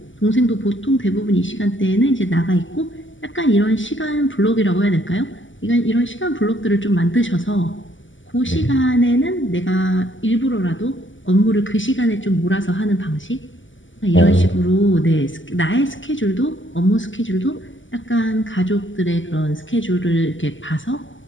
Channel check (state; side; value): late; right; 0.55 ms